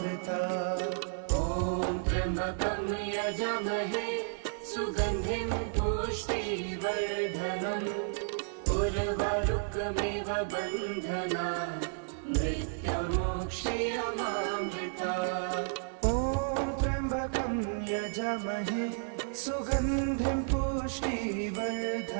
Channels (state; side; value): silent; left; 56 dB below the other